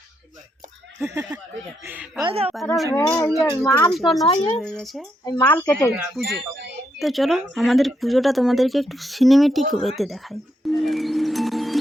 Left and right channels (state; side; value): normal; both; correlation 0.79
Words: মাল কেটে পুজো। তো চলো আমাদের পুজোটা তোমাদেরকে একটু সিনেমেটিক ওয়েতে দেখাই।